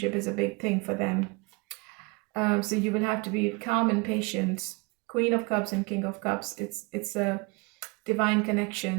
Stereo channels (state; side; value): quieter; left; 28.2 dB